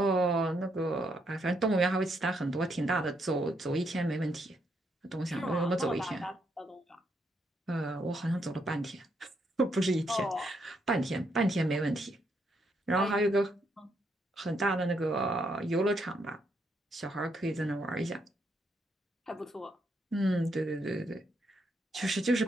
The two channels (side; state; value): both; normal; correlation 0.76